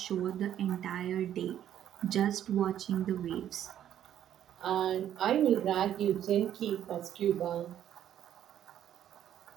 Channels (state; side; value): quieter; left; 10.7 dB